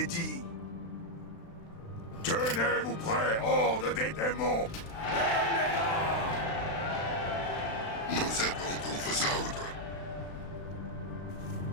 Tenez-vous prêts, horde des démons! Nous attendons vos ordres.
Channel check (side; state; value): right; late; 36 ms